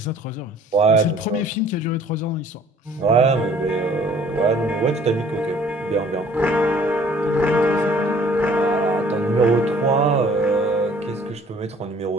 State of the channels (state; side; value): normal; both; correlation 0.55